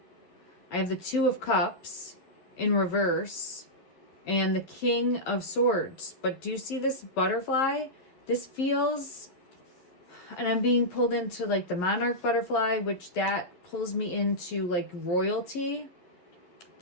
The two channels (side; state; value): right; late; 11 ms